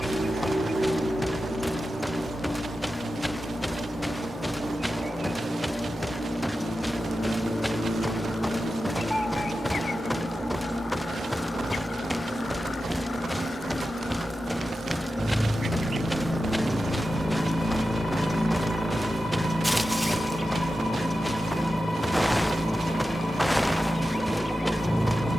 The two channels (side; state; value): both; normal; correlation 0.92